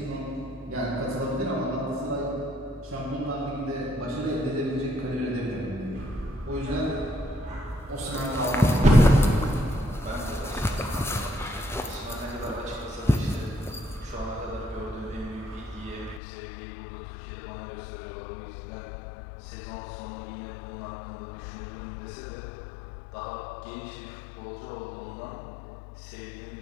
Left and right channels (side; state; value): right; drops out; at 16.2 s